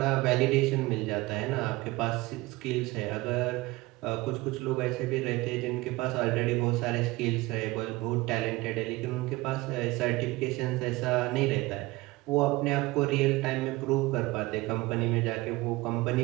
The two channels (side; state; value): left; quieter; 20.8 dB